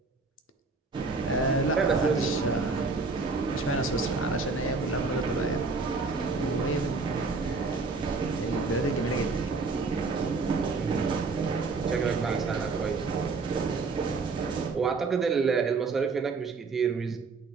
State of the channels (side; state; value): left; quieter; 4.1 dB